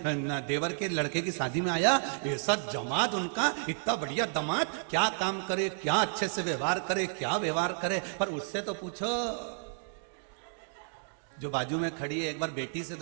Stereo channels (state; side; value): silent; left; digital silence